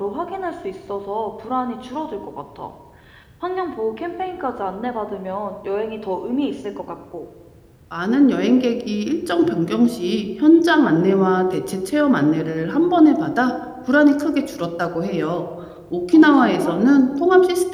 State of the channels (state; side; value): identical; both; correlation 1.00